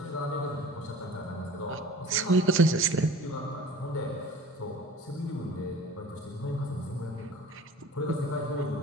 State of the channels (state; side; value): normal; both; correlation 0.43